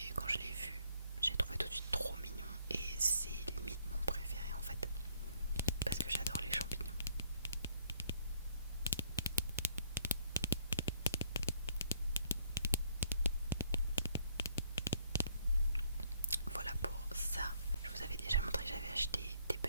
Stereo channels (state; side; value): inverted; both; correlation -0.65